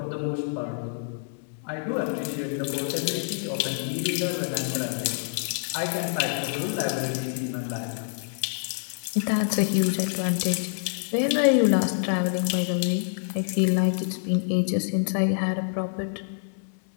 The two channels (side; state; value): right; silent; digital silence